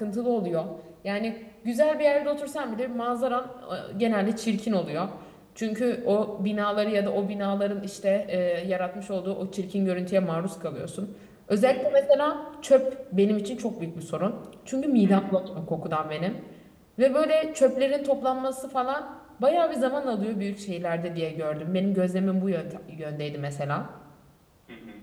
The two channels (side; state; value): both; identical; correlation 1.00